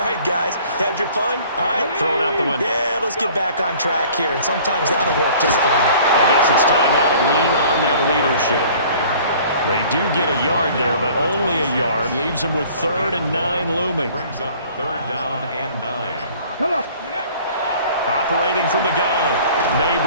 right, guys, had your fun? All right. Throw it out the window. Yeah, let's get back on track here. And sometimes that'll work just fine. I guess it's time now to lean on that leadership. They do get a yard there, but only a yard. Leaves them with 3rd and 9 looming. Brings up 3rd down and 9. Come on. Operating from the gun,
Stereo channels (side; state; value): both; inverted; correlation -0.51